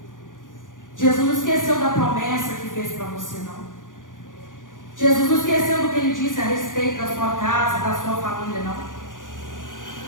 Jesus não esqueceu da promessa que fez para você, não. Jesus não esqueceu do que Ele disse a respeito da sua casa, da sua família, não.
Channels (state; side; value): late; right; 0.88 ms